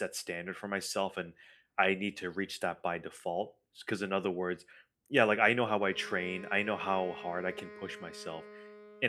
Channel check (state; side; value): identical; both; correlation 1.00